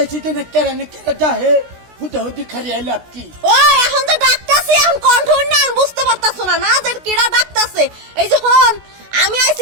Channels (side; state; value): left; late; 16 ms